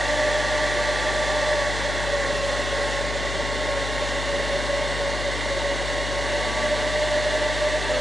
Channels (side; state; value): left; noise; hum, 4 dB below the sound